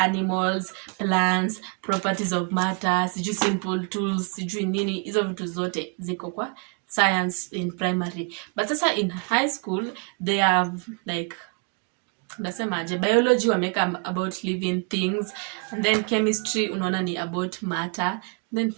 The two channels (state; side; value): quieter; left; 36.0 dB